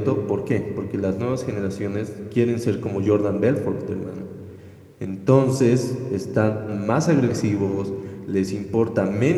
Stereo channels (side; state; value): both; identical; correlation 1.00